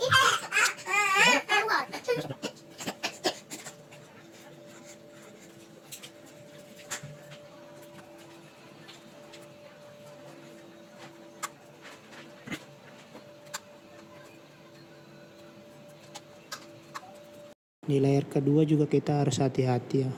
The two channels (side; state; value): both; identical; correlation 1.00